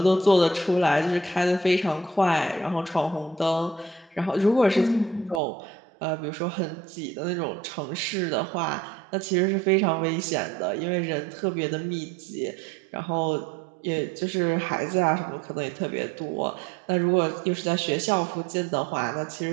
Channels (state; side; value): drops out; left; at 5.4 s